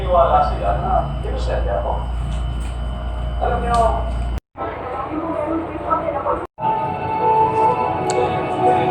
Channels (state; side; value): identical; both; correlation 1.00